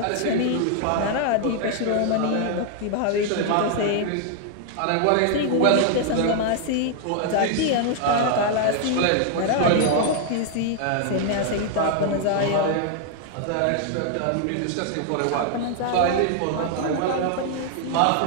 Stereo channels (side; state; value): both; different; correlation 0.00